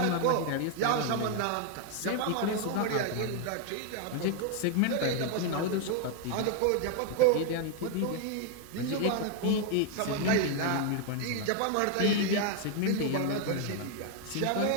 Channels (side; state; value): both; different; correlation 0.01